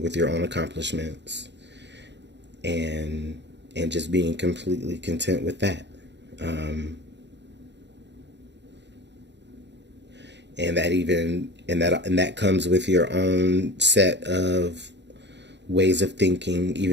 your own accomplishments and just being completely content with that. And that comes with your own set of ways of thinking,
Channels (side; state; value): left; late; 0.51 ms